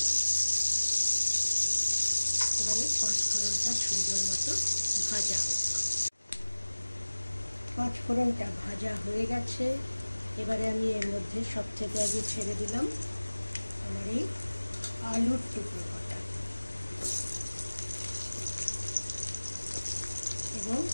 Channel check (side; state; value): both; inverted; correlation -1.00